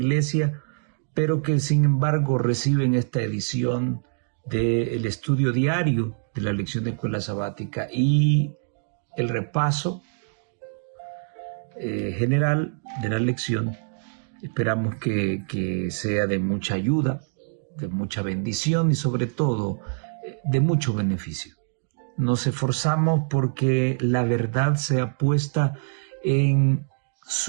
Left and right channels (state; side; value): silent; left; digital silence